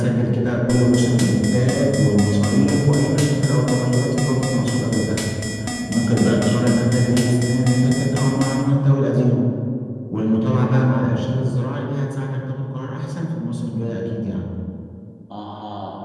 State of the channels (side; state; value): both; identical; correlation 1.00